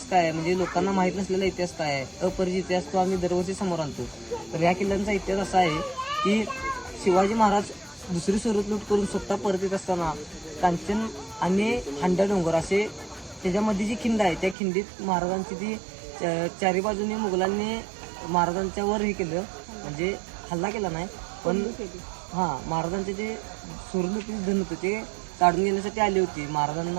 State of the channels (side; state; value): left; drops out; at 14.6 s